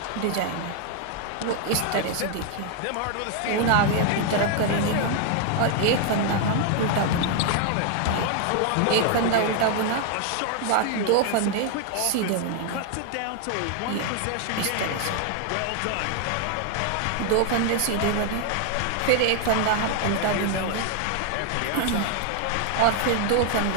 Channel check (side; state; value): both; different; correlation 0.00